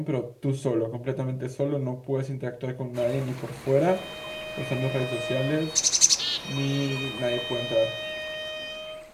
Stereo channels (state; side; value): identical; both; correlation 1.00